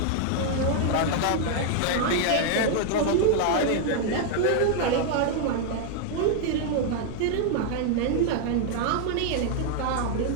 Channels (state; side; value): different; both; correlation 0.00